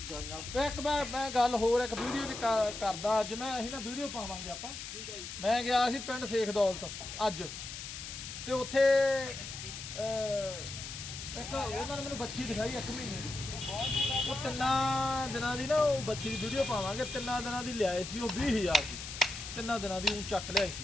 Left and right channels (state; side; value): noise; left; hiss, 9 dB below the sound